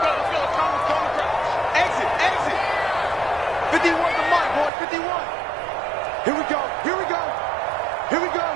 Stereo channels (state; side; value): drops out; left; at 4.7 s